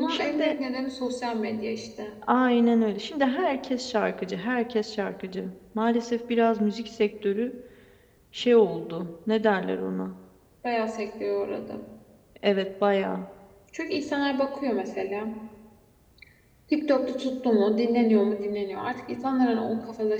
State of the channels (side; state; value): both; identical; correlation 1.00